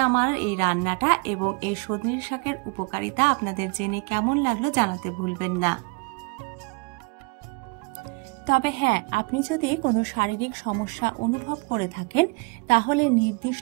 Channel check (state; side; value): quieter; left; 30.3 dB